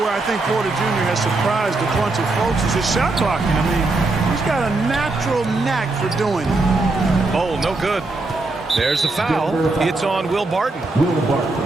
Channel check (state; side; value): quieter; left; 3.3 dB